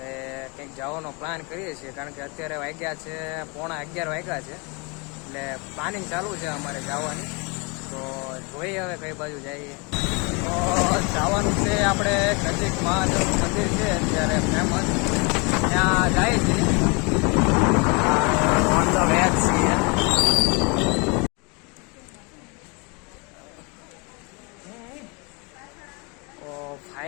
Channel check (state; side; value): quieter; right; 31.0 dB